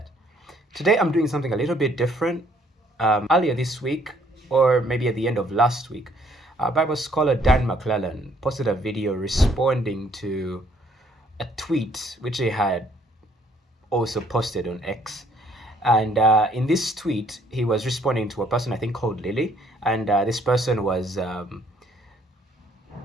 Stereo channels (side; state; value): both; normal; correlation 0.64